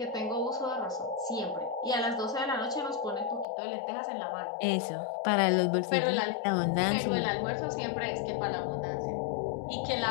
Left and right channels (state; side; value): drops out; right; at 3.5 s